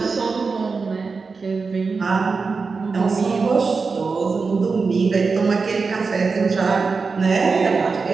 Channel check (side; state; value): left; quieter; 4.6 dB